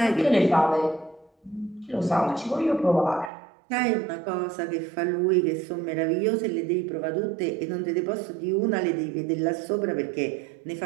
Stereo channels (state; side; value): drops out; left; at 3.3 s